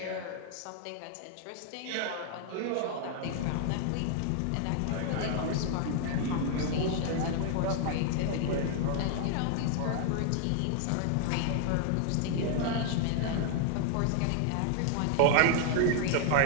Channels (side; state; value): both; different; correlation 0.00